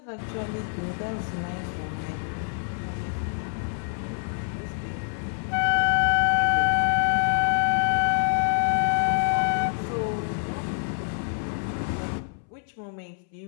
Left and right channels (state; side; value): silent; right; 61 dB below the other